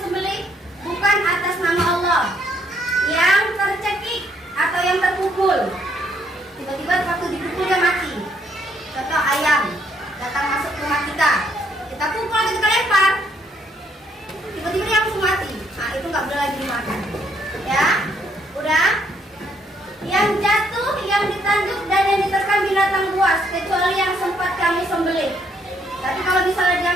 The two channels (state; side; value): normal; both; correlation 0.70